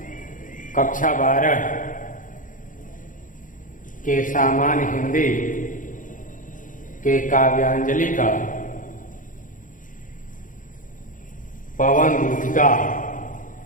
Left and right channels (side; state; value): right; late; 0.38 ms